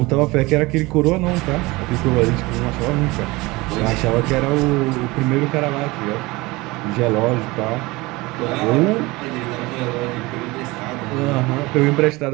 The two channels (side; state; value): left; quieter; 22.1 dB